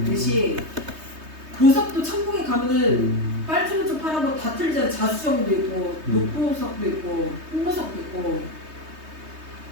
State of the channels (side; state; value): left; late; 3.2 ms